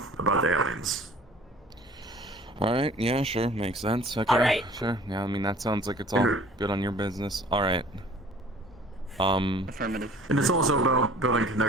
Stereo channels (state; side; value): normal; both; correlation 0.50